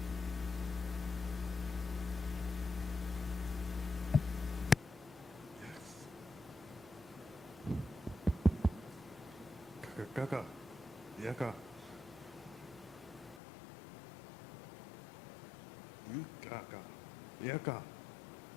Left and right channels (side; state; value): right; drops out; at 13.4 s